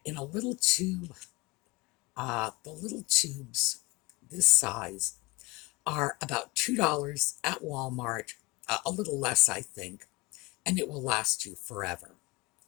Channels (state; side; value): quieter; right; 23.1 dB